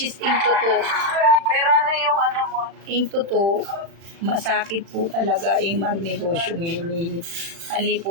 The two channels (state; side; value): late; left; 35 ms